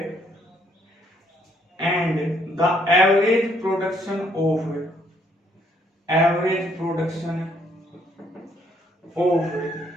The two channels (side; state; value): both; normal; correlation 0.68